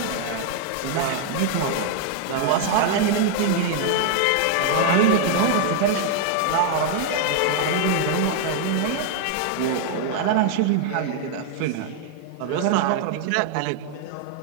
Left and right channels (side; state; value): both; different; correlation 0.00